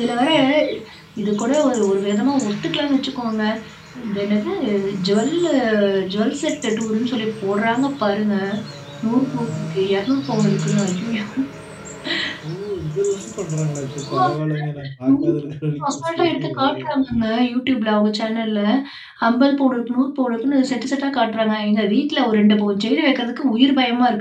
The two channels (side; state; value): both; identical; correlation 1.00